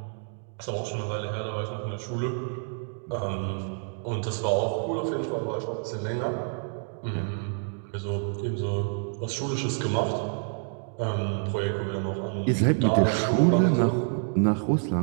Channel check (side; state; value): left; silent; 59 dB below the other